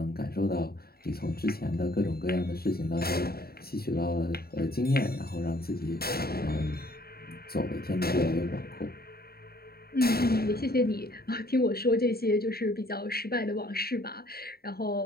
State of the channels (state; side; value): late; right; 0.45 ms